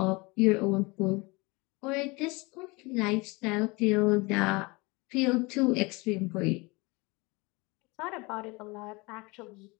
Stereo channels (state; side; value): quieter; right; 25.7 dB